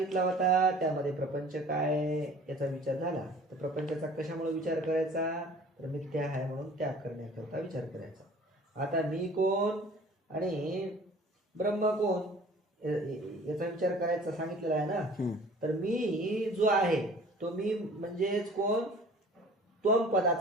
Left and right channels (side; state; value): both; normal; correlation 0.48